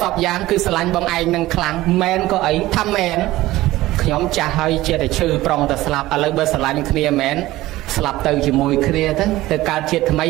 ពយ៉ាងគឺស្រឡាញ់បងឯងនឹងខ្លាំងមែនក៏អីថាមែនខ្ញុំចាស់ហើយជាតែឈឺប្រុងតែស្លាប់ឥឡូវបើស្រឡាញ់គ្នាមែនស្លាប់ទៅជាមួយគ្នាទៅកើតជាតិថ្មី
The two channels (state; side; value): quieter; left; 17.0 dB